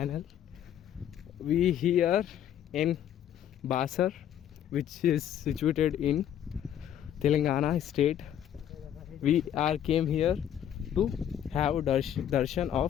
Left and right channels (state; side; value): quieter; right; 10.3 dB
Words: We here in Basar, which is situated in Telangana state. We are came here to have darshan